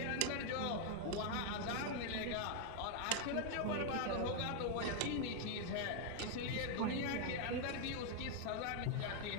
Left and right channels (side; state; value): both; different; correlation 0.00